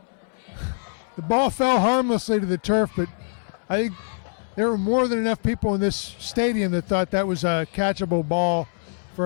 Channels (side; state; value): right; silent; digital silence